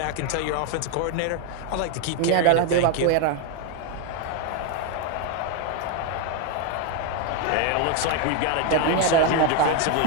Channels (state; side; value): different; both; correlation 0.01